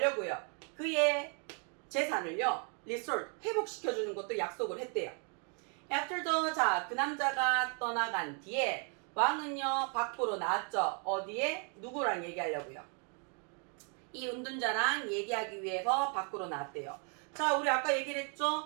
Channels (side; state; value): left; quieter; 38.9 dB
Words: 그의 재산을요 restore 회복시켜주는 것도 약속을 했대요. After the 자, 그 남자가 떠나간 뒤에 왕은요 밖으로 나왔죠. 어디에? 누구랑 얘기하려고요? 이 은둔자랑 얘기하기 위해서 밖으로 나왔대요. 자, 우리 아까 얘기를